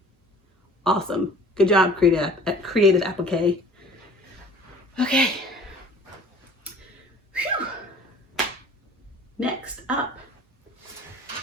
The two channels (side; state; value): both; normal; correlation 0.47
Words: Awesome. Good job, Creative Applique. Okay. Whew. Next up,